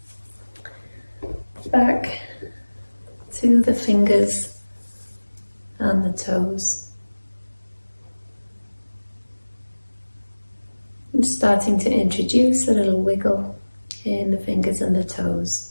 back to the fingers and the toes. And starting to introduce a little wiggle in the fingers and the toes.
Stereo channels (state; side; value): inverted; both; correlation -1.00